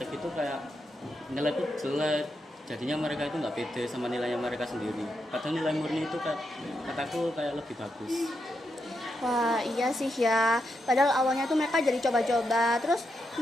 itu kayak nilai itu jelek, jadinya mereka itu nggak pede sama nilainya mereka sendiri, padahal nilai murni itu kataku kayak lebih bagus. Wah, iya sih ya. Padahal awalnya tuh mereka jadi coba-coba, terus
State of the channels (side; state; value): both; normal; correlation 0.83